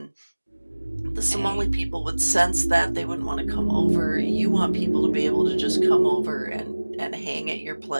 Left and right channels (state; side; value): inverted; both; correlation -1.00